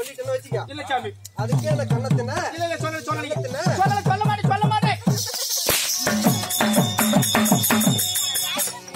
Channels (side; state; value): both; identical; correlation 1.00